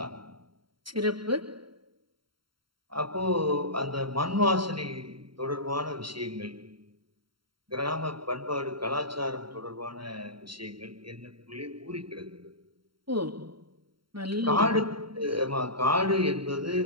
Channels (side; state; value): left; late; 0.73 ms